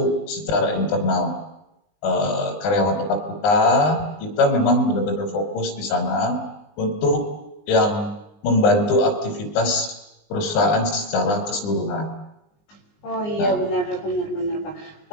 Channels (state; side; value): late; right; 19 ms